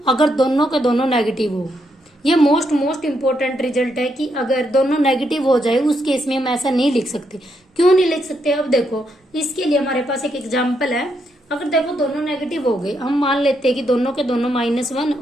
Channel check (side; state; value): both; normal; correlation 0.78